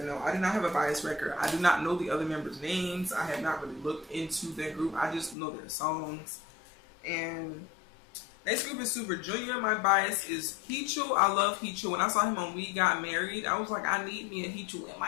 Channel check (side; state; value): right; drops out; at 5.4 s